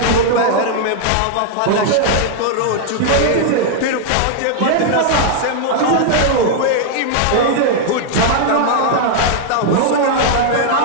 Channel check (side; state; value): both; different; correlation -0.01